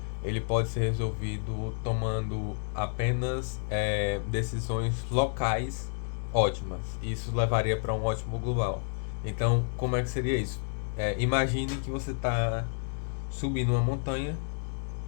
ele pode ser resolvido tomando apenas decisões locais ótimas. Isso levaria para um ótimo global. Então, como é que seria isso? Imagine que você está subindo uma montanha.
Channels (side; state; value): right; silent; digital silence